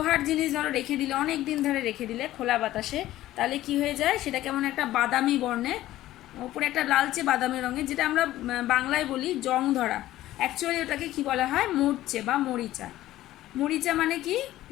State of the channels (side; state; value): right; quieter; 14.9 dB